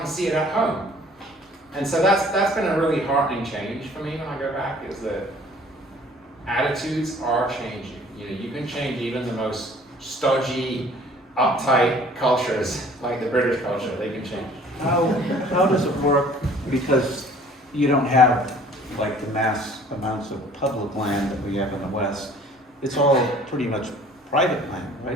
to see it at home. And so that's been a really heartening change for me when I go back, is that attitudes are changing. You can change even the most stodgy, uptight cultures, like the British culture, they can change. how does it work? Because you don't have like the mass amounts of public land that we have in the West. It's all pretty much private land,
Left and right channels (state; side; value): normal; both; correlation 0.53